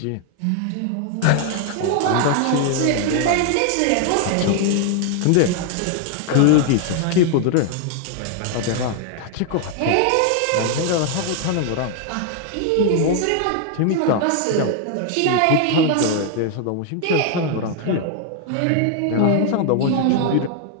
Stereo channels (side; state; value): both; different; correlation 0.00